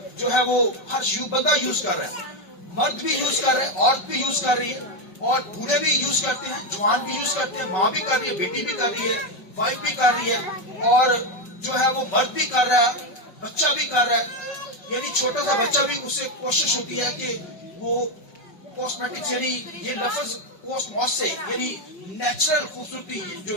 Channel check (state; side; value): late; right; 5.3 ms